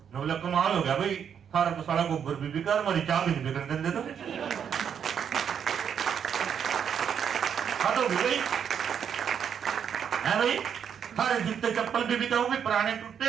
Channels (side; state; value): left; quieter; 7.9 dB